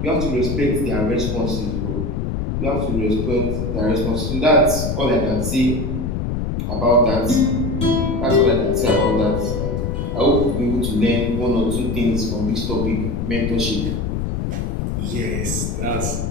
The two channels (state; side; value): noise; left; rumble, 2 dB below the sound